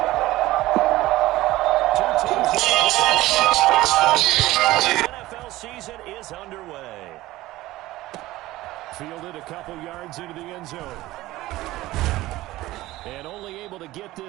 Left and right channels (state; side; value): quieter; left; 17.3 dB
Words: Two teams in the NFL season is underway. Fielded a couple yards into the end zone. And only able to get